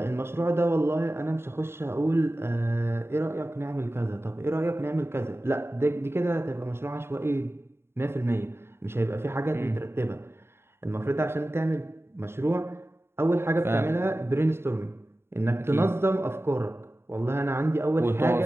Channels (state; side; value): late; left; 0.12 ms